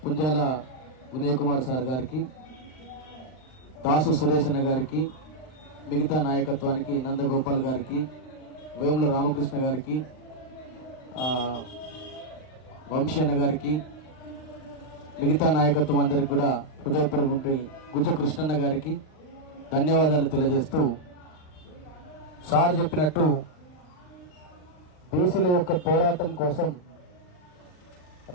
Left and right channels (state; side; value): late; right; 39 ms